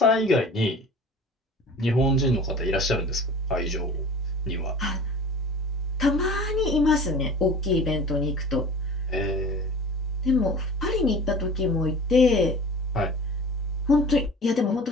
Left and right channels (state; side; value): normal; both; correlation 0.40